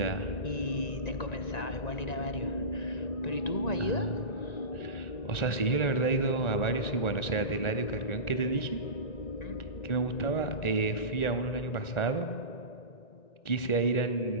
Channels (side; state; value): right; late; 1.9 ms